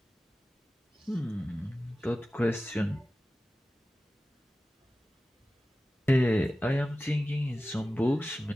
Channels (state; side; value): normal; both; correlation 0.95